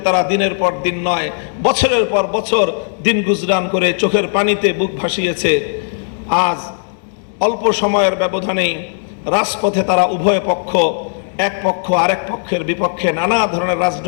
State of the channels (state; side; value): silent; right; digital silence